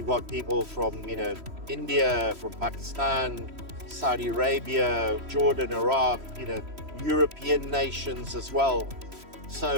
got people from, India, from Pakistan, Saudi Arabia, Jordan, Iraq, European nations as well.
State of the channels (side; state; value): left; late; 3.1 ms